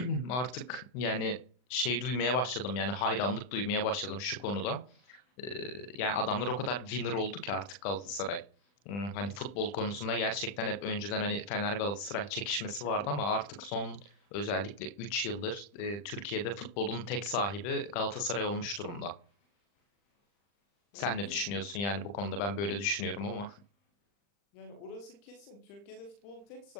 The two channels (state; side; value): late; right; 40 ms